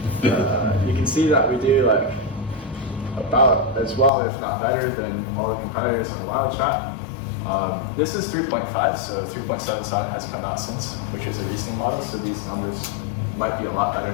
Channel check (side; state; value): right; drops out; at 4.1 s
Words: you can see that we do like about as well, if not better, than all the competitors on WildChat. This is 3.5, so 3.77 has come out since, which is a reasoning model, so these numbers might be a lot better